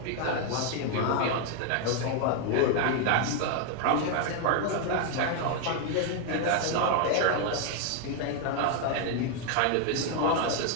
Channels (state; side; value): different; both; correlation 0.00